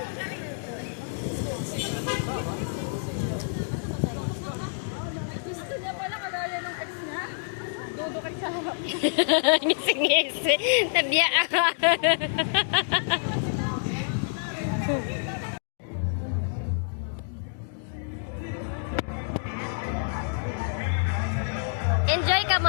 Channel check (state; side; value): silent; right; digital silence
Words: Gusto niya pala kagaya ng ex niya. Dodo kay sa harap. Ngisi. Tadya ako. Enjoy ka